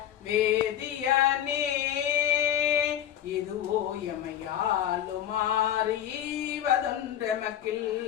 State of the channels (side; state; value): right; quieter; 10.8 dB